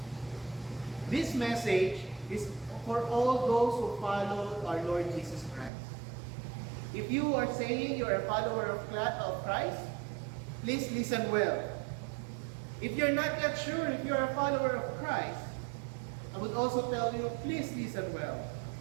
This message is for all those who follow our Lord Jesus Christ. If you are saying you are a follower of Christ, please listen well. If you're not yet sure if you're a follower of Christ, I would also tell you, please listen well.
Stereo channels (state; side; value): drops out; left; at 5.7 s